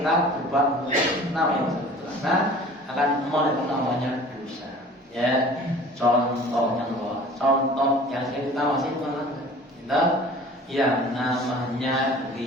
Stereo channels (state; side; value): normal; both; correlation 0.45